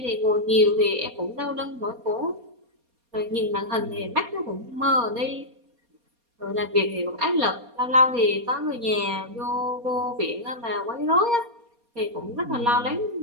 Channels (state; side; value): late; left; 4.2 ms